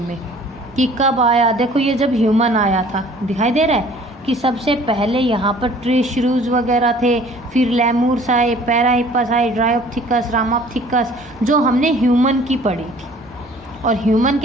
में, कि कब आया। देखो ये जब ह्यूमन आया था, दिखाई दे रहा है कि सबसे पहले यहाँ पर ट्री श्रूज वगैरह थे, फिर लेमूर्स आए, पैराहिपस आए, ड्रायोप्थिकस, रामाप्थिकस, जो हमने ह्यूमन की पढ़ी थी। और ह्यूमन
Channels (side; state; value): both; normal; correlation 0.52